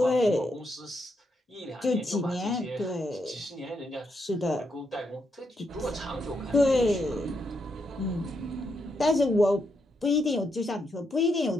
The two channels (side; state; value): both; normal; correlation 0.80